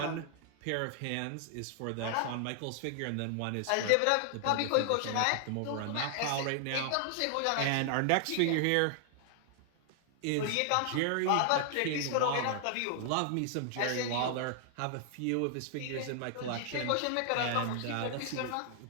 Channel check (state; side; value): different; both; correlation 0.00